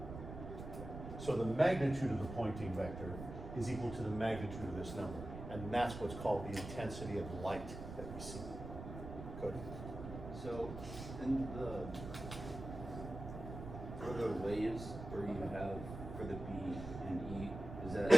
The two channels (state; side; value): noise; right; rumble, 9 dB below the sound